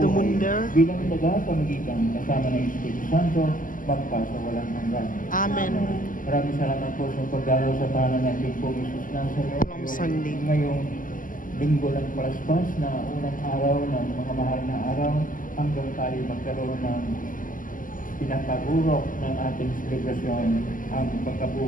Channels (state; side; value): late; right; 0.39 ms